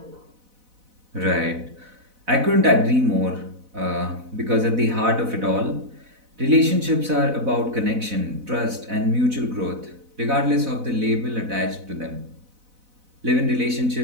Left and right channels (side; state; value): left; late; 4.0 ms